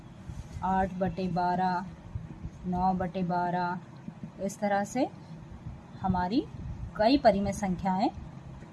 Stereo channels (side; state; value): both; identical; correlation 1.00